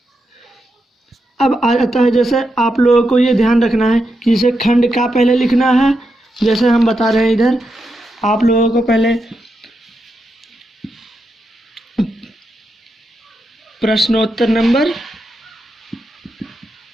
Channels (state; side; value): normal; both; correlation 0.85